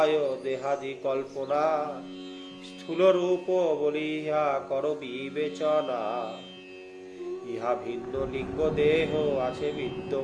দেহাদি কল্পনা, স্থূল রূপ বলিয়া কর বিবেচনা। ইহা ভিন্ন লিঙ্গ দেহ আছে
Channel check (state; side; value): identical; both; correlation 1.00